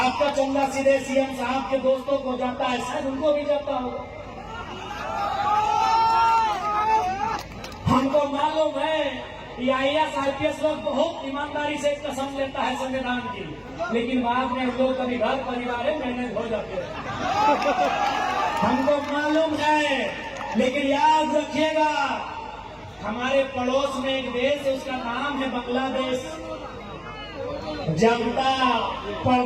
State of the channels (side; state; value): both; identical; correlation 1.00